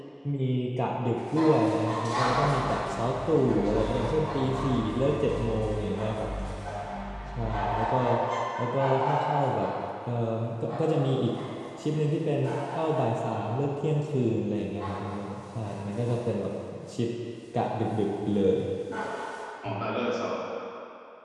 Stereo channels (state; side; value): identical; both; correlation 1.00